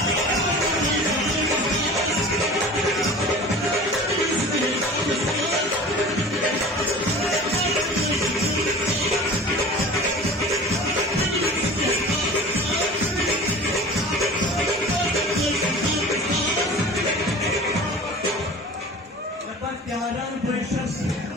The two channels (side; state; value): both; normal; correlation 0.39